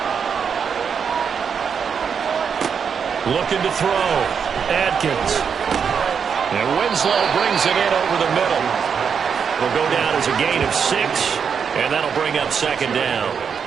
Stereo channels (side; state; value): left; quieter; 6.7 dB